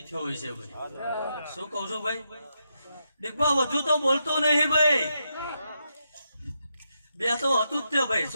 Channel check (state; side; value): inverted; both; correlation -0.83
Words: થયો હોય છે ભાઈ શું કહું છું ભાઈ દીકબા વધુ તો બોલતો નહીં ભાઈ બે તો હતું જ તે ભાઈ